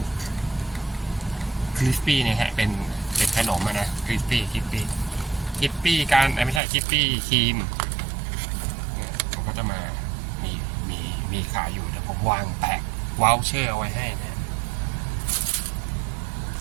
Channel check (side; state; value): left; drops out; at 6.6 s